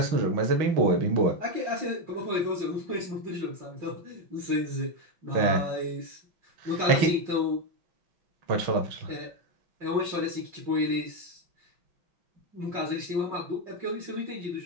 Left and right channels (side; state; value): left; late; 6.2 ms